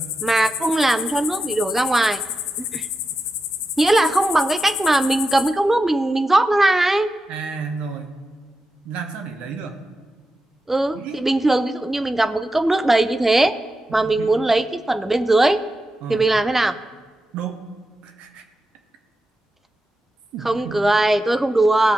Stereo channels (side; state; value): both; normal; correlation 0.90